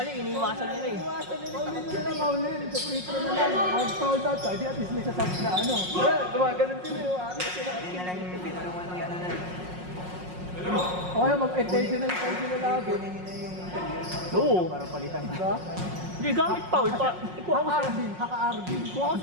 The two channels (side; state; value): left; late; 5.5 ms